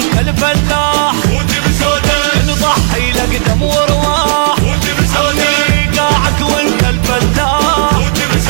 الفلاح، نضحي لك دم وارواح. عمي قاعك وانت الفلاح،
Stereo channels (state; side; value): silent; left; digital silence